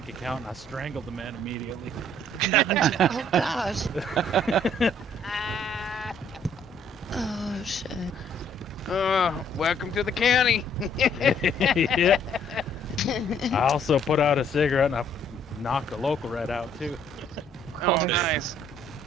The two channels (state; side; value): normal; both; correlation 0.63